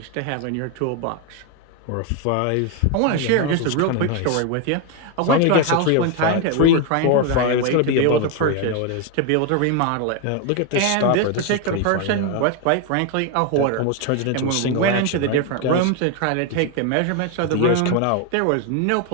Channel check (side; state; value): both; different; correlation 0.01